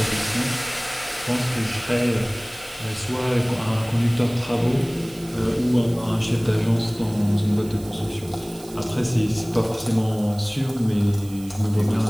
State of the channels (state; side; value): noise; right; hiss, 20 dB below the sound